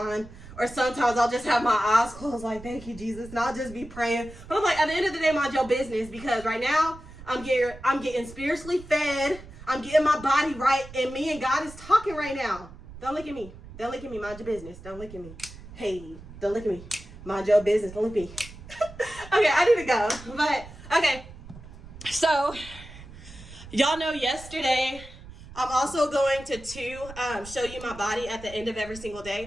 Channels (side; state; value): right; noise; rumble, 17 dB below the sound